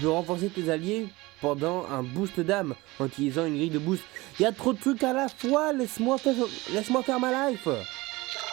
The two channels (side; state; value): left; quieter; 21.3 dB